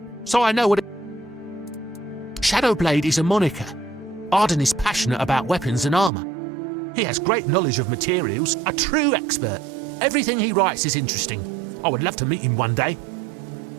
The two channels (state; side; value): drops out; left; at 6.1 s